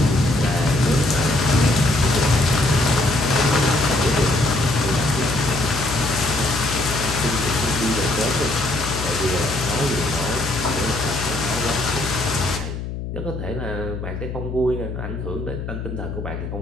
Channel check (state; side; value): noise; left; hum, 7 dB below the sound